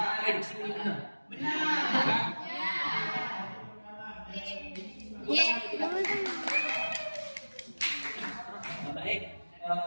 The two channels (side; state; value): both; inverted; correlation -1.00